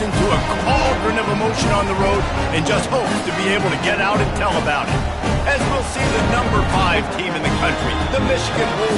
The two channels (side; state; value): both; identical; correlation 1.00